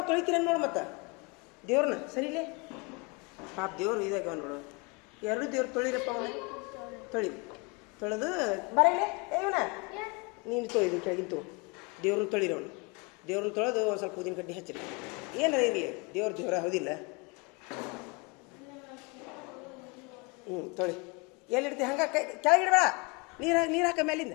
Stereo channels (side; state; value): right; quieter; 29.4 dB